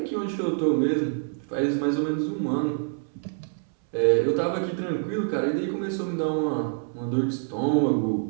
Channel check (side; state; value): left; silent; 61 dB below the other